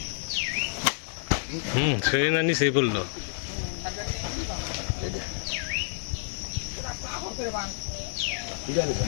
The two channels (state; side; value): silent; right; digital silence